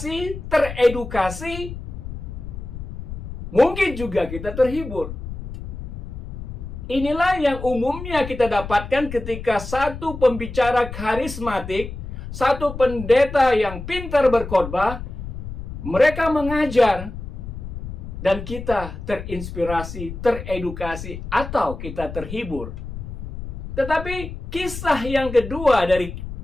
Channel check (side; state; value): left; noise; rumble, 9 dB below the sound